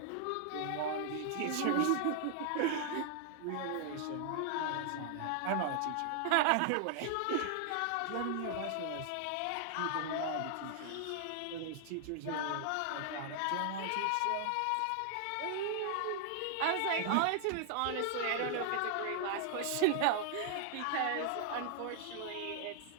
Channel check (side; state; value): both; different; correlation 0.00